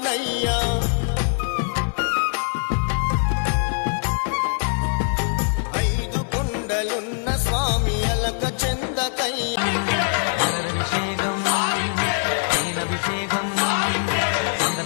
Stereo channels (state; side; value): silent; right; 61 dB below the other